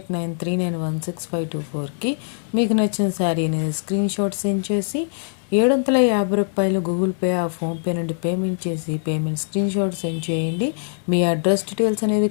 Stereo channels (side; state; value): right; silent; digital silence